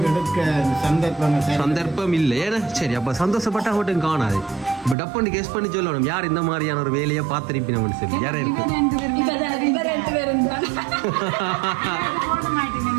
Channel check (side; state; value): left; drops out; at 5.0 s